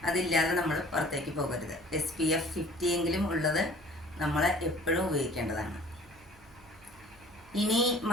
അതില്ലാതെ നമ്മൾ പുറത്തേക്ക് പോകരുത്. SPF 50 എങ്കിലും ഉള്ളത് നമ്മൾ എപ്പോഴും ഉപയോഗിക്കേണ്ടതാണ്. ഇനി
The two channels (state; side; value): noise; right; hum, 27 dB below the sound